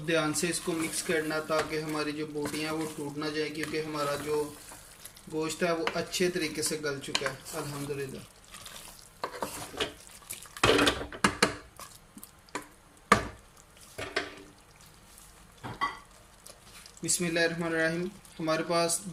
ध्यान से इसको मिक्स करना ताकि हमारी जो बोटियाँ हैं वो टूट ना जाए, क्योंकि हमारा जो गोश्त है वो अच्छे तरीके से गल चुका है अल्हम्दुलिल्लाह। बिस्मिल्लाहिर्रहमानिर्रहीम हमारे पास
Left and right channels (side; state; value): both; identical; correlation 1.00